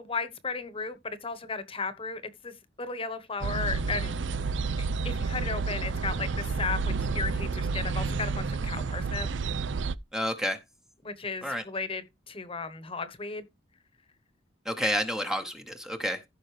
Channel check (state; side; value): normal; both; correlation 0.38